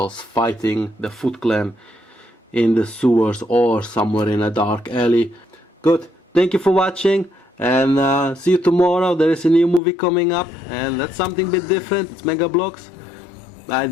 fighting the Foot Clan in the sewers or somewhere in a dark alley. Good, thank you for watching, and see you tomorrow. There is a new movie coming up, and that's something a bit different. It's Mega Blocks. I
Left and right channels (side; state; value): right; drops out; at 9.8 s